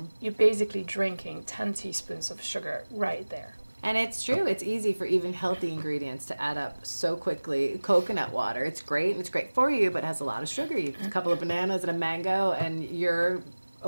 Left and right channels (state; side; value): inverted; both; correlation -1.00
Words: You're basically drinking 10 teaspoons of sugar right there. And it's true. It's easy for even healthy ingredients to add up so quickly. Coconut water, it's great, and it's great for you, but it has a lot of sugar. You have a couple of bananas and a mango, and you're